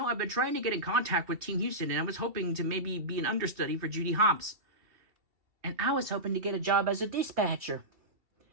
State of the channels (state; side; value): late; left; 2.7 ms